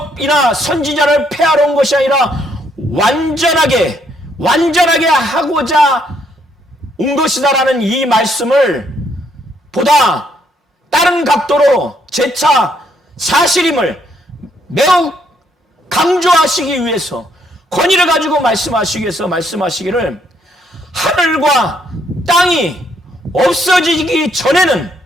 선지자를 폐하러 온 것이 아니라 완전하게 하고자 온 것이다라는 이 말씀을 보다 다른 각도로 재차 사실임을 매우 강조하시기 위해서, 권위를 가지고 말씀하시기 위해서 말씀하시기를, 하늘과 땅이 없어지기 전에는,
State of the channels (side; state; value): both; normal; correlation 0.71